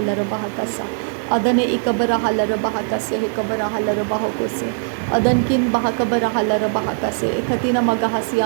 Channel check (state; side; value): silent; left; digital silence